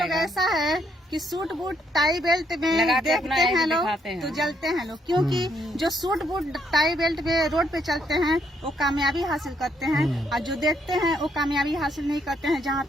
पाएगा। ऐसा है कि सूट बूट टाई बेल्ट में लगाते अपना देखते ऐसे हैं लोग दिखाते हैं। तो जलते हैं लोग, क्योंकि जो सूट बूट टाई बेल्ट में रोड पे चलते हैं वो कामयाबी हासिल करते हैं, और जो देखते हैं वो कामयाबी हासिल नहीं करते हैं। जहाँ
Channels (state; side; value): normal; both; correlation 0.73